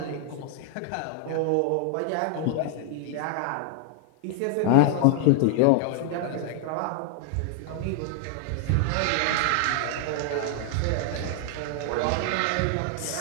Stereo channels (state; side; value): different; both; correlation 0.00